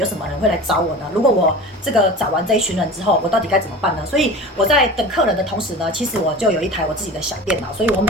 什么人会来找我呢？如果我这个找完这一群人之后，我到底该怎么办呢？所以我在等客人的同时呢，其实我就有一台我自己的小电脑，所以我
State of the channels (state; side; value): normal; both; correlation 0.35